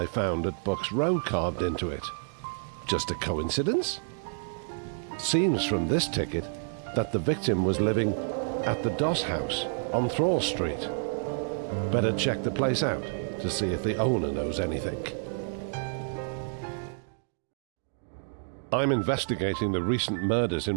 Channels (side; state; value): left; silent; digital silence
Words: found at Buck's Row carved into it. Just a coincidence? Seems from this ticket that the victim was living at the Doss House on Thrall Street. Better check the place out to see if the owner knows anything. I'm investigating the recent murders